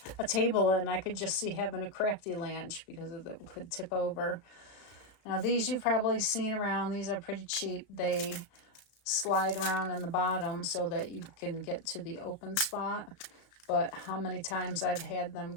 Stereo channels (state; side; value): late; right; 35 ms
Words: a table, and I could just see having a crafty lunch because it could tip over. Now, these you've probably seen around. These are pretty cheap. They slide around in the bottom so that you can get to the open spot. But how many times I've had them